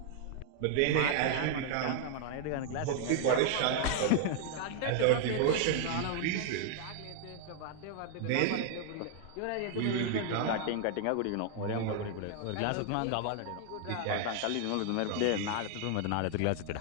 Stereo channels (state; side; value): different; both; correlation 0.00